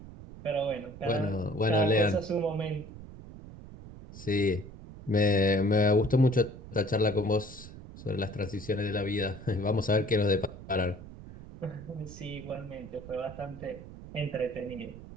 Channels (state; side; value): noise; right; rumble, 15 dB below the sound